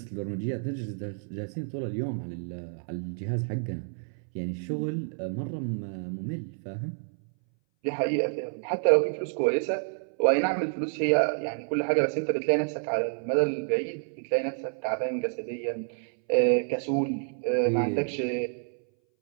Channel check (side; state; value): left; silent; 59 dB below the other